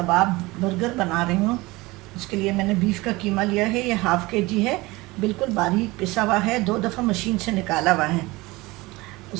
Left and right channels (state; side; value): quieter; left; 21.8 dB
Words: बर्गर बना रही हूँ। उसके लिए मैंने बीफ का कीमा लिया है, ये हाफ़ के जी है, बिल्कुल बारीक पिसा हुआ है, 2 दफ़ा मशीन से निकाला हुआ है।